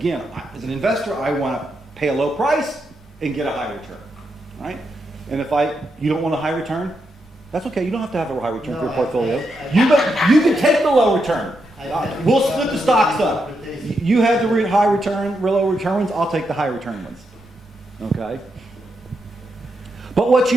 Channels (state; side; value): normal; both; correlation 0.83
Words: as an investor, I want to pay a low price and get a high return, right? And if you don't want a high return, that's okay. You don't have to have a high return for your portfolio. You can take the low return. We'll split the stocks up. You have the high return, low return ones. I'll take the high return ones. Okay. But what